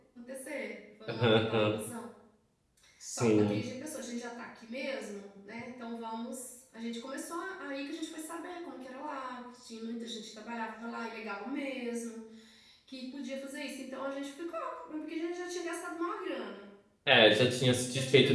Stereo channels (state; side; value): identical; both; correlation 1.00